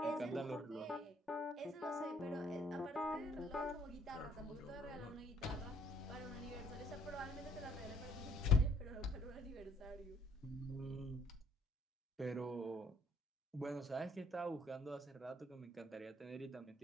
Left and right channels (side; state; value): both; normal; correlation 0.63